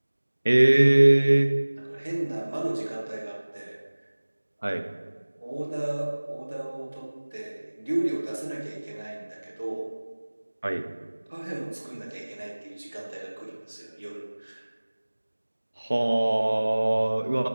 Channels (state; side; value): inverted; both; correlation -1.00